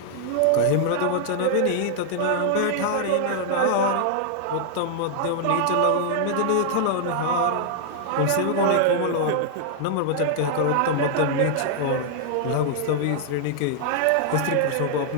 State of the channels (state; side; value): different; both; correlation -0.01